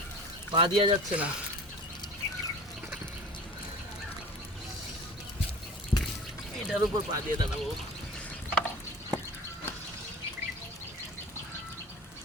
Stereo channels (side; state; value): both; normal; correlation 0.38